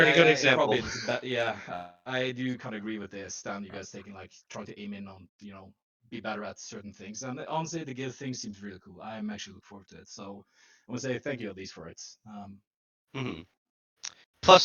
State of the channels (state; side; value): identical; both; correlation 1.00